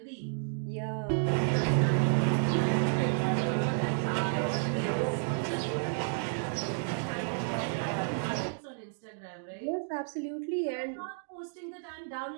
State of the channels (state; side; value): silent; left; digital silence